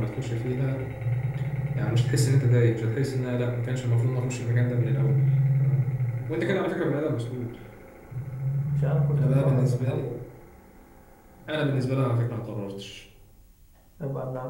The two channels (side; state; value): both; identical; correlation 1.00